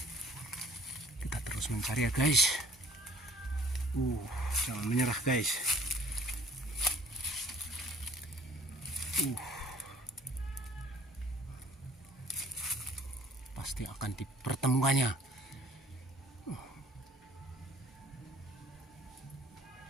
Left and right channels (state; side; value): normal; both; correlation 0.55